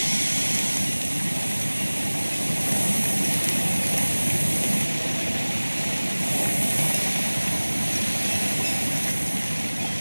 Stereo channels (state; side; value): inverted; both; correlation -1.00